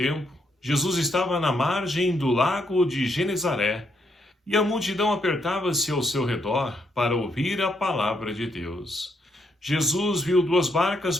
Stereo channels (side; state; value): both; normal; correlation 0.76